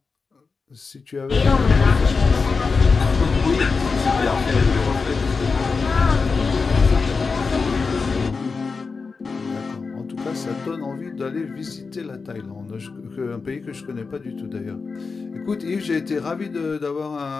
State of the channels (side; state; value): right; quieter; 4.6 dB